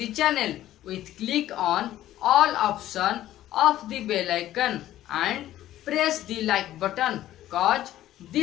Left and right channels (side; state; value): right; quieter; 13.5 dB